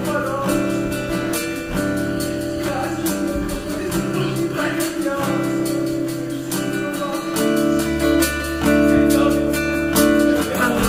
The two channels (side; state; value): both; identical; correlation 1.00